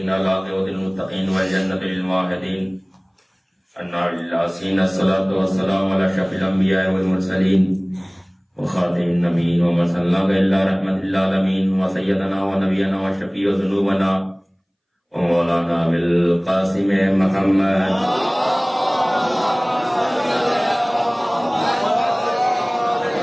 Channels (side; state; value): both; identical; correlation 1.00